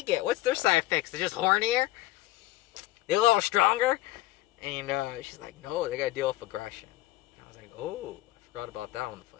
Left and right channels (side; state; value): right; quieter; 16.9 dB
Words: get? What's their side effects? They're just hornier? They're a little stronger? And she's like, no, they gotta deal with aggression. And I was like, oh, I forgot about that on the